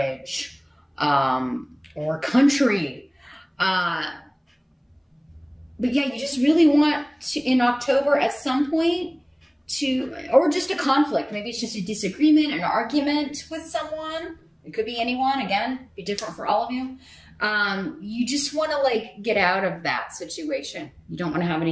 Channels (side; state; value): both; identical; correlation 1.00